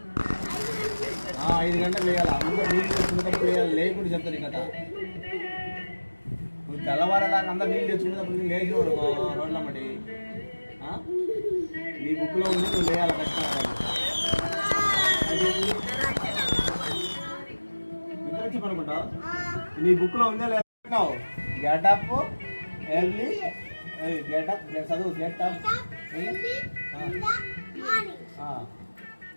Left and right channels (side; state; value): both; inverted; correlation -1.00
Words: 5 గంటలకు వేయాలి అందరు నీళ్ళు తెచ్చుకునేటప్పుడు వేయాలి లేకుండా చెప్తాను ఈ కథ నువ్వు తెల్లవారేదాకా అందరు నీళ్ళు తెచ్చుకునేటప్పుడు లేచి రోడ్లమ్మటి నీ బుక్లో ఉంది నువ్వు లేయాలి ఖచ్చితంగా నిద్రచ్చి పనుకుంటావు నీ బుక్లో ఉందే లేదు గెటప్ ఎర్లీ గెటప్ చదువు గెటప్